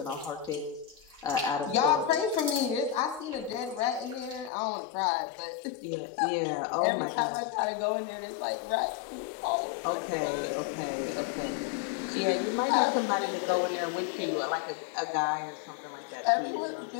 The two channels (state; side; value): drops out; right; at 4.5 s